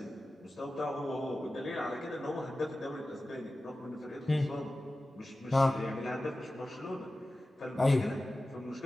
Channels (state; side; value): normal; both; correlation 0.95